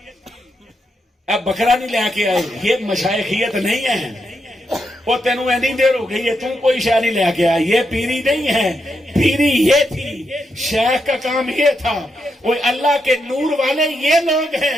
اب بکرا نہیں لے کے آئے، یہ مشائخیت نہیں ہے۔ وہ تینوں نہیں دیر ہو گئی ہے، تم کوئی شے نہیں لے کے آئے، یہ پیری نہیں ہے، پیری یہ تھی، شیخ کا کام یہ تھا۔ وہ اللہ کے نور والے یہ لوگ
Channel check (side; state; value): both; normal; correlation 0.83